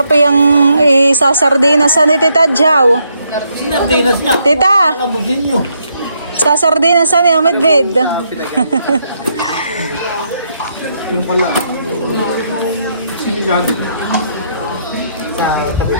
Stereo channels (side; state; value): both; inverted; correlation -0.76